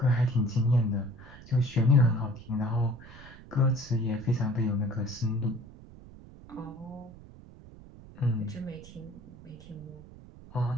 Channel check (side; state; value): right; noise; rumble, 19 dB below the sound